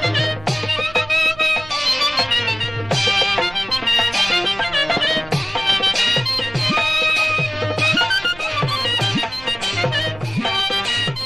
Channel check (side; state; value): right; noise; hum, 21 dB below the sound